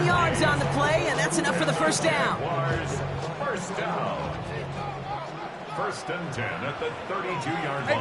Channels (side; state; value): both; identical; correlation 1.00